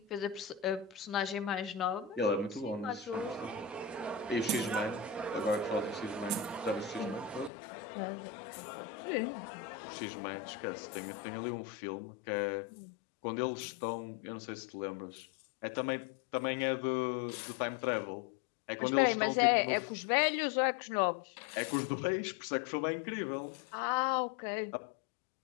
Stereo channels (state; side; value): drops out; right; at 7.5 s